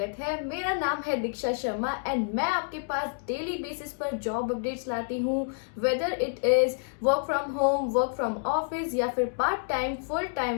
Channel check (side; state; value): right; silent; digital silence